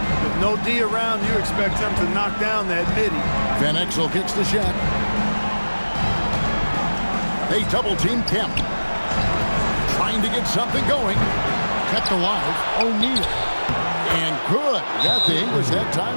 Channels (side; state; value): both; inverted; correlation -1.00